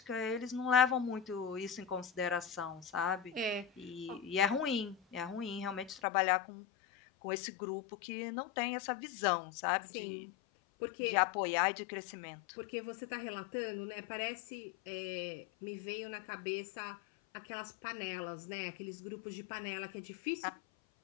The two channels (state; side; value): drops out; right; at 6.0 s